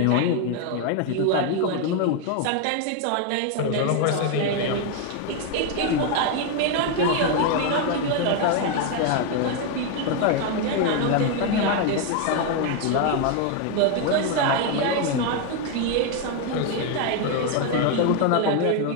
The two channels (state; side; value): different; both; correlation 0.01